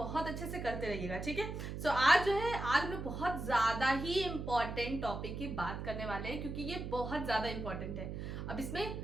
अच्छे से करते रहिएगा, ठीक है। सो आज जो है, आज हम बहुत ज्यादा ही इम्पोर्टेंट टॉपिक की बात करने वाले हैं, क्योंकि ये बहुत ज्यादा इम्पोर्टेंट है। अब इसमें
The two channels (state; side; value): noise; right; hum, 6 dB below the sound